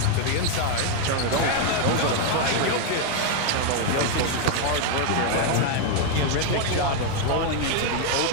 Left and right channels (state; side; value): different; both; correlation 0.01